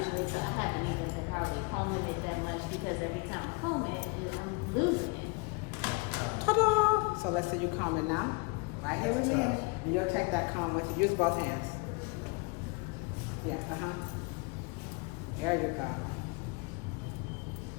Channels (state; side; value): quieter; right; 28.1 dB